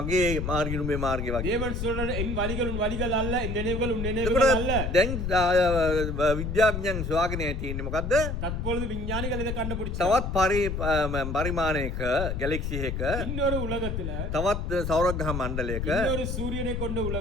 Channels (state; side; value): noise; left; rumble, 3 dB below the sound